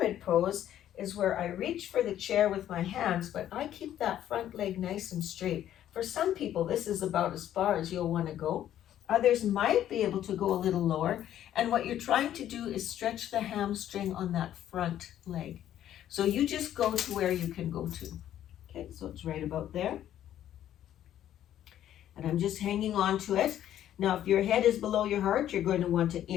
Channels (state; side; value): quieter; right; 11.5 dB